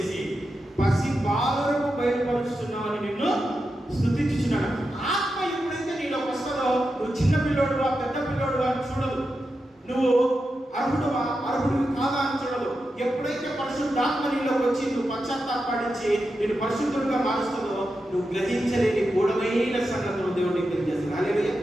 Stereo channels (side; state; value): both; normal; correlation 0.89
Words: పసి బాలులకు బయలుపరుస్తున్నావని నిన్ను స్తుతించుచున్నాను. ఆత్మ ఎప్పుడైతే నీలో వస్తుందో నువ్వు చిన్న పిల్లోడువా పెద్ద పిల్లోడువా అని చూడదు, నువ్వు అర్హుడువా అర్హుడివి కాదా అని చూడదు. ఎప్పుడైతే పరిశుద్ధాత్మ నీలోకి వచ్చి నువ్వు పశ్చాత్తాపడించి నేను పరిశుద్ధుడిగా మారుస్తుందో నువ్వు గ్రహించలేని గూఢమైన సంగతులు దేవుడికి తెలియజేస్తుంది. హల్లెలూయా,